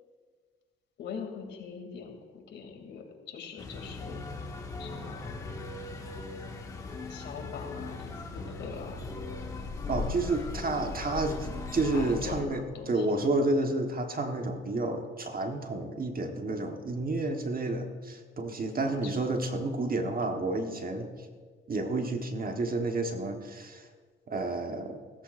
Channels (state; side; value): normal; both; correlation 0.50